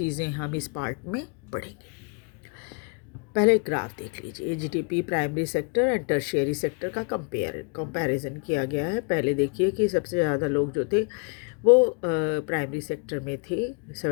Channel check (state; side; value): quieter; right; 34.7 dB